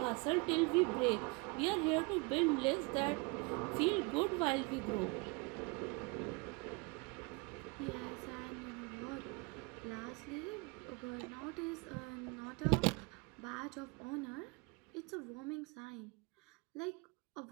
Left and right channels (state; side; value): quieter; left; 28.7 dB